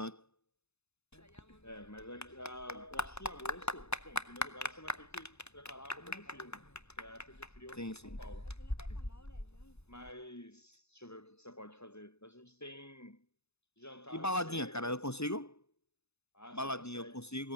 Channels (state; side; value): late; right; 0.80 ms